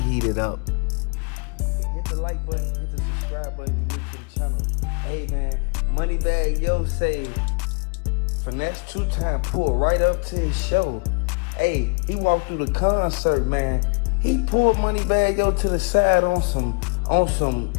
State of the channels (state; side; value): quieter; right; 35.5 dB